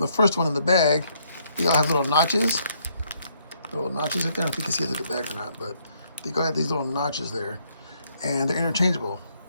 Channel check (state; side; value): inverted; both; correlation -0.70